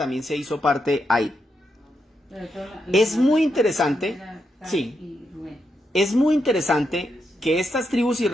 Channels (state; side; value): normal; both; correlation 0.83